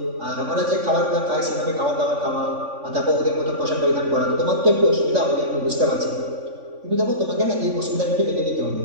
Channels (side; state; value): left; late; 3.5 ms